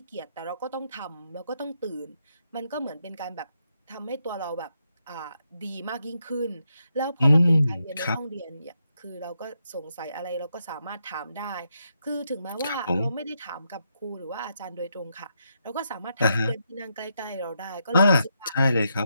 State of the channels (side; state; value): both; inverted; correlation -0.81